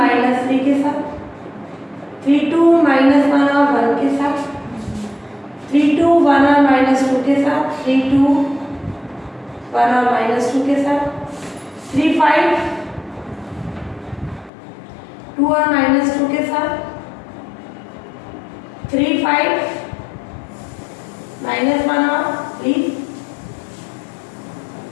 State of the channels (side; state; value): right; drops out; at 14.5 s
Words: के साथ, 3 2 -1 और 1 के साथ, 3 2 1 और -2 के साथ, 3 2 1 और -2 के साथ, 3 5 2 और -2 के साथ, 3 5 -1 और 3